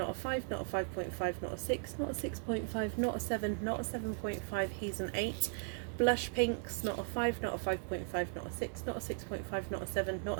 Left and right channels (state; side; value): silent; left; 53 dB below the other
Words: a 5, not a 5.5, not a 6, not a 6.5, not a 7, not a 7.5, he's an 8. Blush pinks, not a 5, not a 5.5, not a 6, not a 6.5, not a 7, not